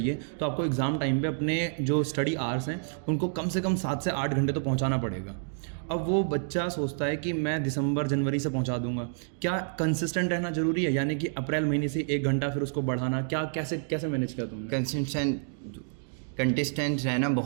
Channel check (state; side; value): silent; left; digital silence